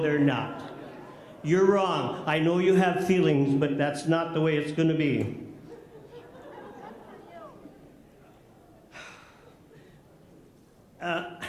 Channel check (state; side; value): identical; both; correlation 1.00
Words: not. You're wrong. I know you have feelings, but that's not the way it's going to be.